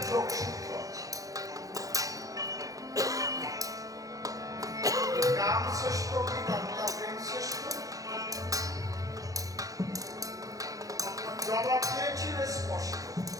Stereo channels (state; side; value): late; left; 0.17 ms